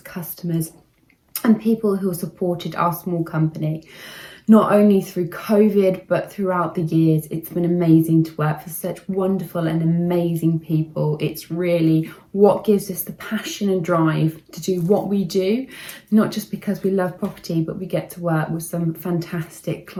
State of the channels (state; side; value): identical; both; correlation 1.00